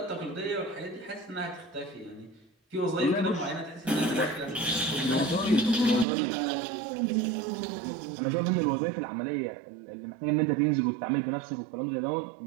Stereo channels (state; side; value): drops out; left; at 6.1 s